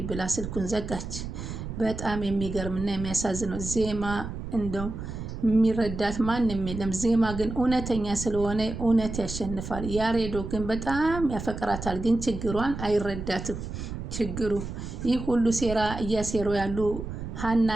ብላ ስልኩን ዘጋች። በጣም የሚገርምና የሚያሳዝነው ዜማ እንደው የሚረዳት ማንም የለም። ዜማ ግን እውነተኛ ስለሆነ እውነት ያሸንፋል። ያሬዶ ግን በጣም ያፈቅራታል፣ ግን ችግሯን አይረዳትም። ችግሩ ይህ ሁሉ ሴራ እያሴሩ ያሉ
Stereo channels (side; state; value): right; noise; rumble, 7 dB below the sound